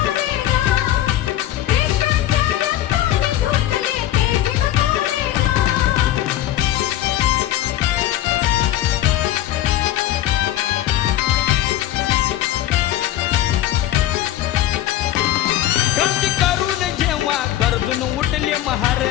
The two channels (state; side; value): quieter; right; 13.4 dB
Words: क्रांती करून जेव्हा गरजून उठले महार.